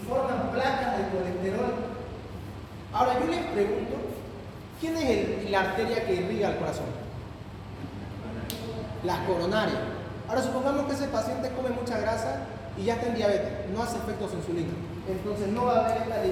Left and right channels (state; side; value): identical; both; correlation 1.00